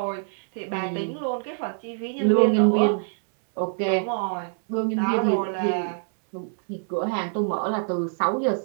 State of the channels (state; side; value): silent; left; 62 dB below the other